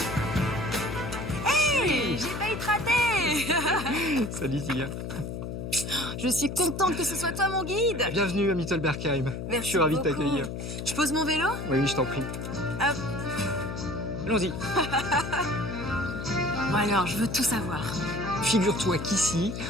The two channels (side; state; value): left; noise; hum, 6 dB below the sound